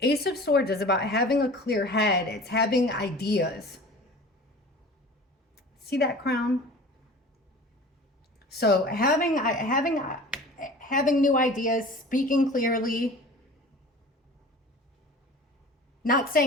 Ace of Swords is about having a clear head. It's having ideas. See that crown? So having new ideas, speaking clearly, not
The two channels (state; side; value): normal; both; correlation 0.40